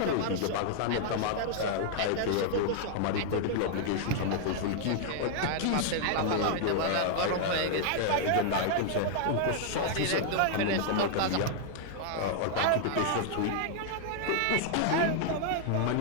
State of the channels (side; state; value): both; different; correlation -0.01